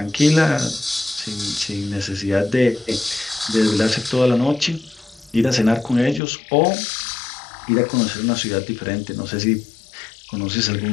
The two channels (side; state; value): right; drops out; at 6.2 s